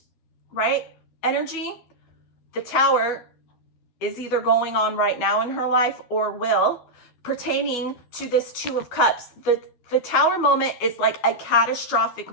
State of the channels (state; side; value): late; right; 12 ms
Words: right? Energy. The Tower is either going on right now in her life or will, pertaining to this Two of Cups. The Tower moment is like a catastrophic